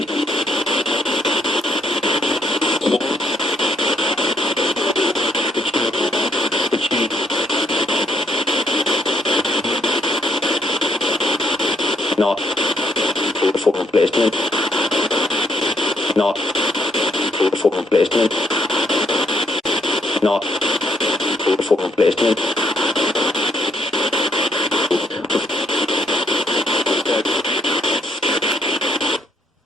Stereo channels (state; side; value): normal; both; correlation 0.71